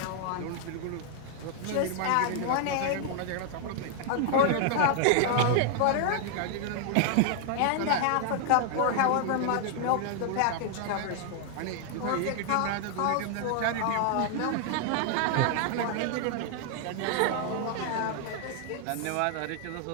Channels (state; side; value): different; both; correlation 0.00